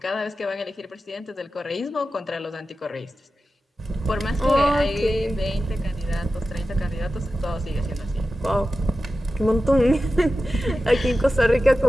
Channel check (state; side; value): normal; both; correlation 0.93